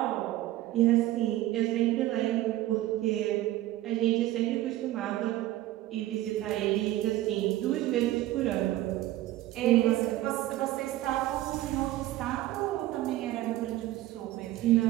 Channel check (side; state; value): left; quieter; 15.4 dB